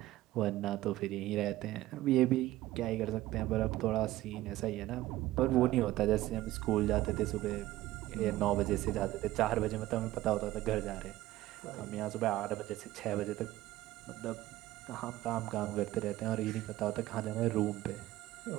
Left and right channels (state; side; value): quieter; left; 16.0 dB